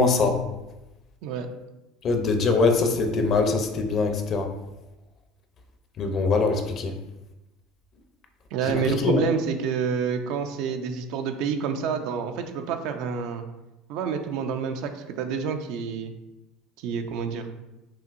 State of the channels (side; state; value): both; normal; correlation 0.41